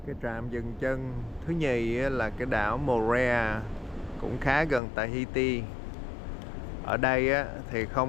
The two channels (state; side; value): drops out; right; at 4.8 s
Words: Cái trạm dừng chân thứ nhì là cái đảo Moorea, cũng khá gần Tahiti. Ở đây thì